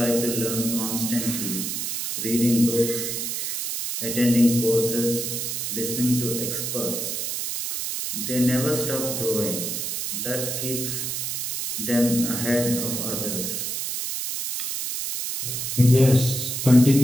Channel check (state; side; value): noise; right; hiss, 3 dB below the sound